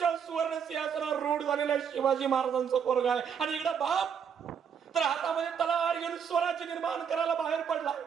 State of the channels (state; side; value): quieter; left; 7.4 dB